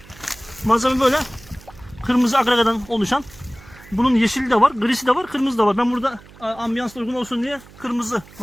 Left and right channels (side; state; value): right; noise; hum, 22 dB below the sound